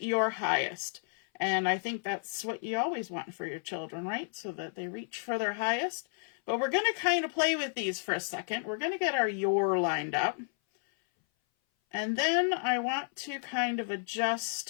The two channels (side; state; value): right; silent; 56 dB below the other